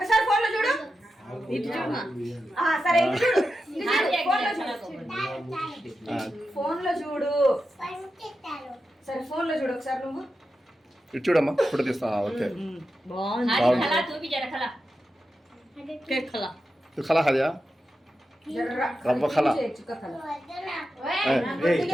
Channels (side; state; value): both; normal; correlation 0.90